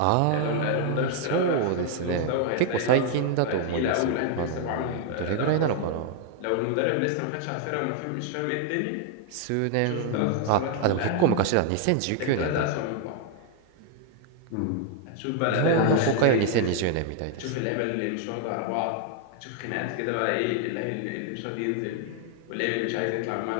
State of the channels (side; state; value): both; different; correlation 0.00